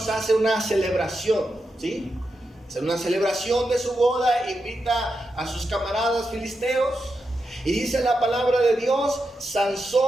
hace una celebración, ¿sí? Hace una celebración de su boda, invita a sus camaradas filisteos. Y dice la palabra de Dios,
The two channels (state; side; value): normal; both; correlation 0.87